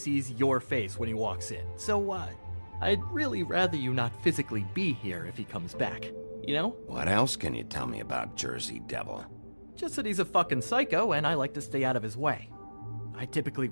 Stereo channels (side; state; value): both; inverted; correlation -1.00